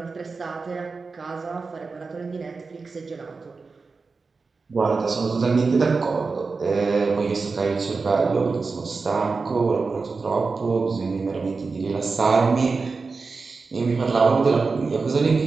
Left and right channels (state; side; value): quieter; left; 4.4 dB